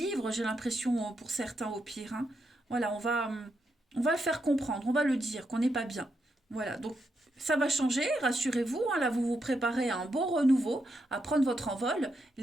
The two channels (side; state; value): both; normal; correlation 0.82